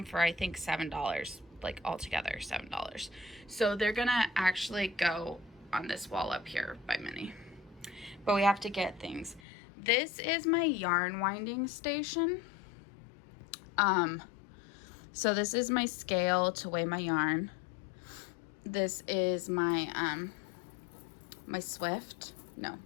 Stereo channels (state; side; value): drops out; right; at 9.4 s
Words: for I think $7, like altogether $7. So they're gonna actually go on this wall up here by Minnie, but we have to get things. This is my yarn winding station. So this is my scale to weigh my yarn. This is my my Swift. No,